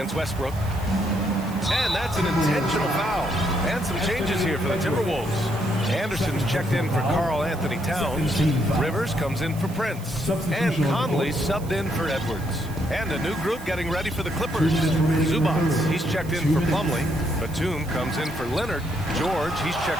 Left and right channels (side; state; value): right; noise; hiss, 19 dB below the sound